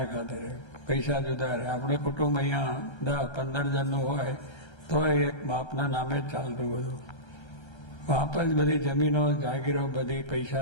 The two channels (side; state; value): right; late; 1.3 ms